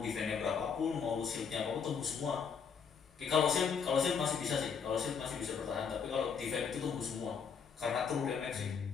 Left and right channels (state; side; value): quieter; right; 6.4 dB